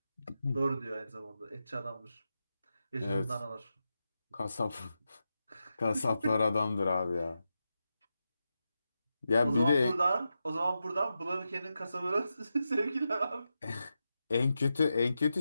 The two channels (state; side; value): inverted; both; correlation -0.89